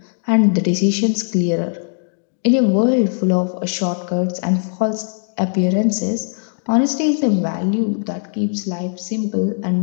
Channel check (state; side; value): silent; right; digital silence